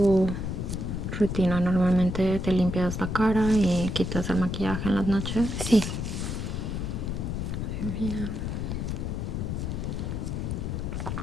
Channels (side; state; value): left; noise; rumble, 3 dB below the sound